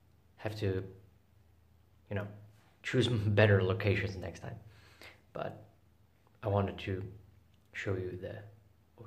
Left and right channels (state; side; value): identical; both; correlation 1.00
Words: have to, choose better locations next time. But I wanted to show you the